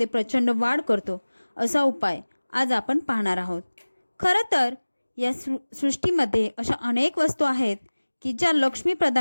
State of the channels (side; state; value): both; inverted; correlation -1.00